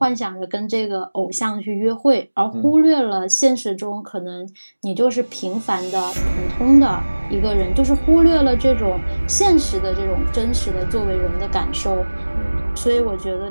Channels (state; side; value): inverted; both; correlation -1.00